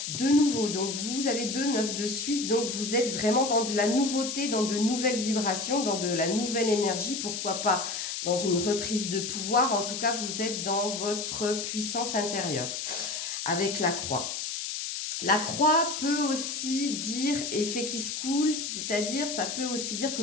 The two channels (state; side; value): noise; left; hiss, 4 dB below the sound